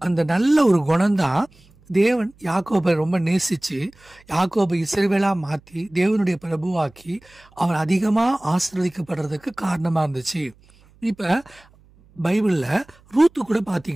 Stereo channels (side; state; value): right; noise; hum, 29 dB below the sound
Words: அந்த நல்ல ஒரு குணம்தான் தேவன் யாக்கோபை ரொம்ப நேசிச்சு யாக்கோபை இஸ்ரவேலா மாத்தி தேவனுடைய பிரபுவாக்கி அவன் அதிகமா ஆசீர்வதிக்கப்படுறதுக்கு காரணமா இருந்துச்சு. இப்ப பைபிள்ல ரூத்து கூட